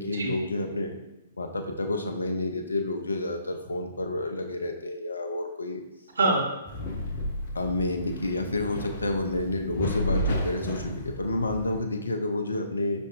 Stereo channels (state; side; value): inverted; both; correlation -0.67